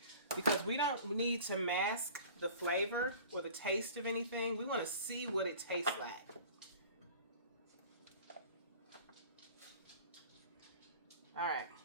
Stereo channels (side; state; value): both; inverted; correlation -0.43